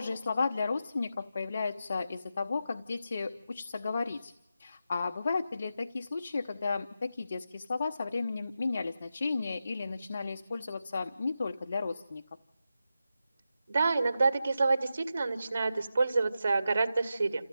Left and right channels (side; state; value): both; inverted; correlation -0.89